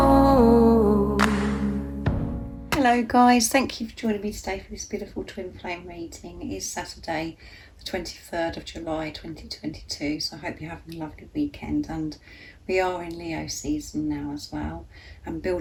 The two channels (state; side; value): identical; both; correlation 1.00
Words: Hello guys, thank you for joining me today for this beautiful twin flame reading. It is Saturday the 23rd of July 2022, so I hope you're having a lovely weekend, and we are in Leo season now as well, and